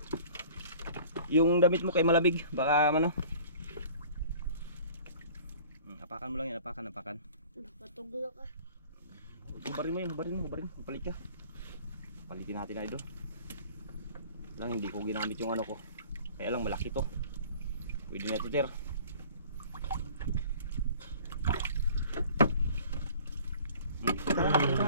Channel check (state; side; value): inverted; both; correlation -0.47